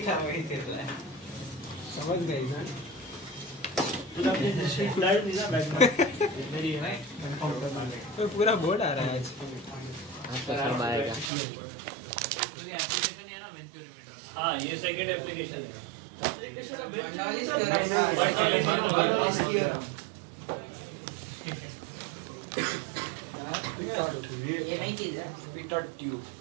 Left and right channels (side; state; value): left; drops out; at 11.3 s